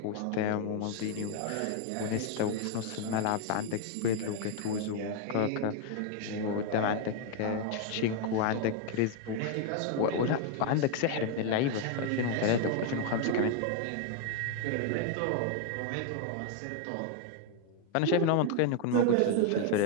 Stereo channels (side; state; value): both; different; correlation 0.01